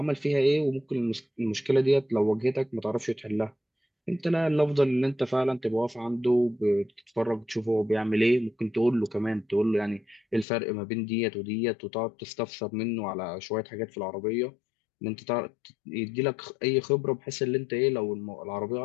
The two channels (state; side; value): drops out; right; at 10.5 s